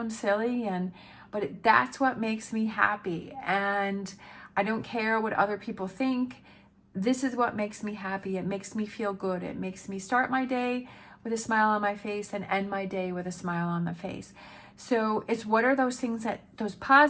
silly, but that's what makes me happy. And I don't care what other people think. This is what makes me happy. It makes me feel good. It makes me start my day with a smile on my face and end my day with a smile on the face. So it's what are those things, that those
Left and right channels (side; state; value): both; identical; correlation 1.00